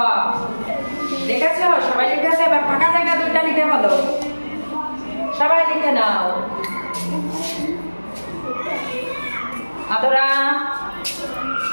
দেখেছো? সবাই লিখেছে। এবার ফাঁকা জায়গা দুইটা লিখে বলো। সবাই লিখে নাও। আদরা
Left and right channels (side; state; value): both; inverted; correlation -1.00